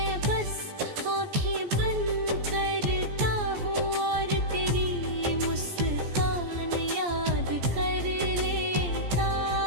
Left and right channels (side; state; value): left; late; 14 ms